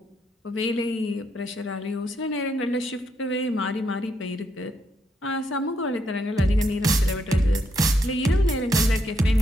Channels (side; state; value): both; normal; correlation 0.77